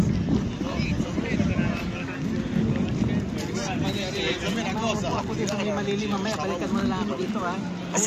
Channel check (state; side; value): identical; both; correlation 1.00